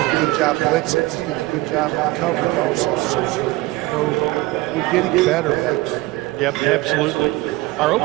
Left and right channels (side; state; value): left; quieter; 19.5 dB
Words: a good job blitzing. He's doing a good job in coverage also. So, you know, we're getting better. Yep, absolutely. Our